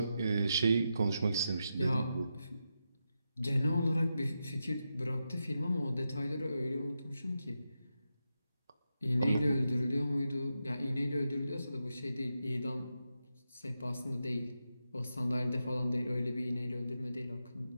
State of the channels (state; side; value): inverted; both; correlation -0.87